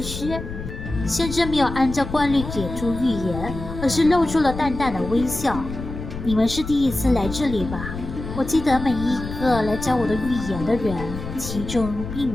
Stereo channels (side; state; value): left; noise; rumble, 8 dB below the sound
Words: 師。先知沒有按照慣例給出預言，而是露出了淡淡的微笑。你們是第一次來這裡吧？我記得每一個來找我的預言的人，其中並